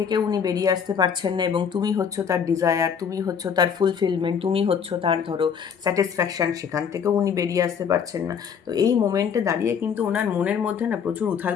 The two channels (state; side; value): quieter; right; 7.1 dB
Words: উনি বেরিয়ে আসতে পারছেন না। এবং তুমি হচ্ছ তার ডিজায়ার, তুমি হচ্ছ তার ফুলফিলমেন্ট, তুমি হচ্ছ তার ধরো স্যাটিসফ্যাকশান, সেখান থেকেও উনি বেরিয়ে আসতে পারছেন না। তো এই মোমেন্টে দাঁড়িয়ে কিন্তু ওনার মনের মধ্যে না প্রচুর উথাল